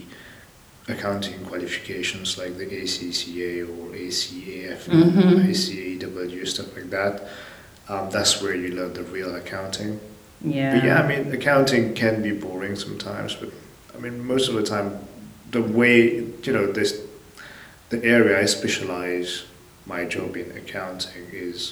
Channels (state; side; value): identical; both; correlation 1.00